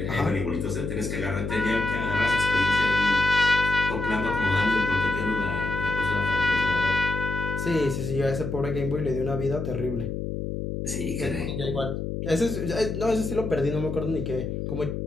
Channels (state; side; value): noise; left; hum, 3 dB below the sound